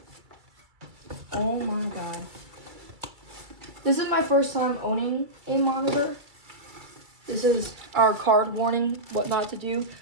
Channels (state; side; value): late; left; 2.3 ms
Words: Oh my god. This is my first time owning a monitor. This is our card warning, what not to do.